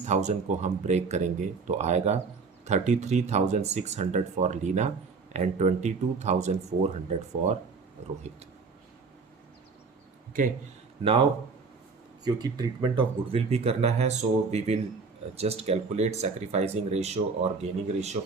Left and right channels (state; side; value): quieter; left; 4.7 dB